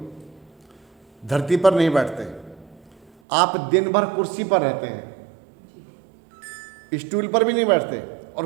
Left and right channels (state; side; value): drops out; left; at 3.1 s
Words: धरती पर नहीं बैठते। आप दिन भर कुर्सी पर रहते हैं, स्टूल पर भी नहीं बैठते, और